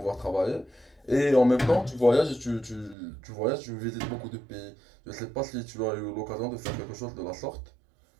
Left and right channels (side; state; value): left; drops out; at 3.0 s